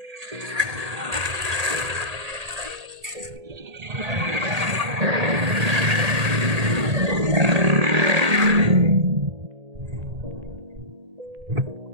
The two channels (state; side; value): late; left; 1.8 ms